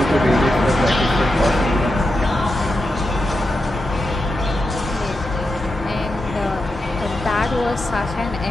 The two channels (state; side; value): normal; both; correlation 0.88